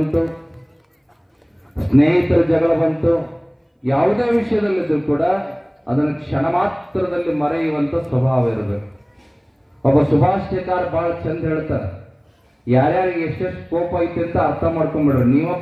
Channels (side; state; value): both; identical; correlation 1.00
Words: ಸ್ನೇಹಿತರ ಜಗಳ ಬಂತು, ಯಾವುದೇ ವಿಷಯದಲ್ಲಿದ್ರೂ ಕೂಡ ಅದನ್ನು ಕ್ಷಣ ಮಾತ್ರದಲ್ಲಿ ಮರೆಯುವಂತ ಸ್ವಭಾವ ಇರಬೇಕು. ಒಬ್ಬ ಸುಭಾಷಿತಕಾರ ಬಹಳ ಚಂದ ಹೇಳ್ತಾರೆ, ಯಾರ್ಯಾರಿಗೆ ಎಷ್ಟೆಷ್ಟು ಕೋಪ ಐತಿ ಅಂತ ಅರ್ಥ ಮಾಡ್ಕೊಂಡ್ಬಿಡ್ರಿ, ನೀವ